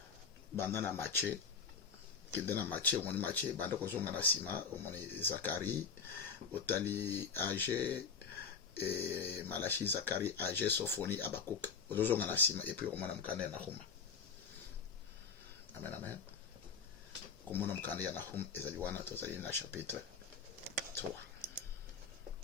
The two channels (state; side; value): quieter; right; 5.7 dB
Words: banda na Matthieu kende na Matthieu omoni Matthieu banda kozonga na sima omoni Zacharie otali Agé et Malachi Zacharie Agé Sophonie Abakuk ozonga na sima et puis omona mukanda na Nahum. Amen amen. Komona mukanda ya Nahum ezali wana tozali na chapitre 3.